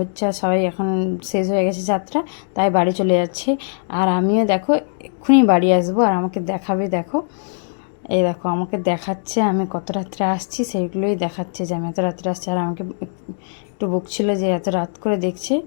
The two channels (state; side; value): silent; right; 66 dB below the other